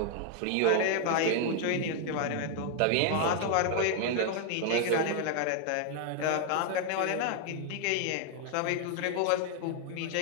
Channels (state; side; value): different; both; correlation 0.00